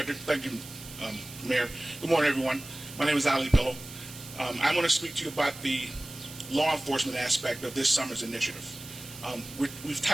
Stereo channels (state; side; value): noise; right; hiss, 15 dB below the sound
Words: Thank you, Mayor. Good morning, everyone. My name is Ali Pillow. I want to speak to you about the law enforcement aspect of this summer's initiative. We've